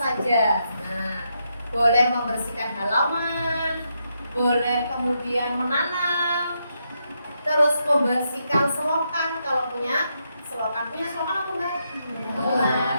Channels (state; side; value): inverted; both; correlation -0.81